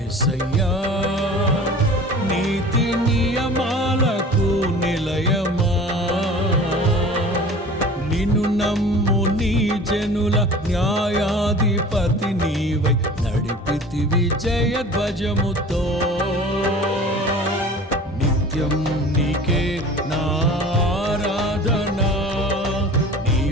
నీతి నియమాలకు నిలయమా, నిన్ను నమ్ము నీ జనుల న్యాయాధిపతి నీవై నడిపితివి జయధ్వజముతో. నిత్యం నీకే నా ఆరాధన,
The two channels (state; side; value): normal; both; correlation 0.42